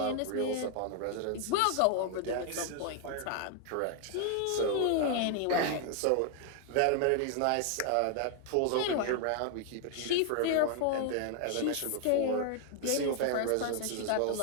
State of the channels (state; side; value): different; both; correlation 0.00